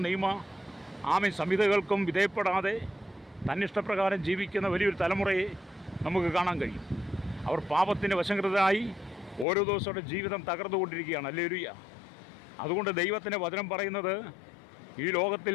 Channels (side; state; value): right; drops out; at 9.5 s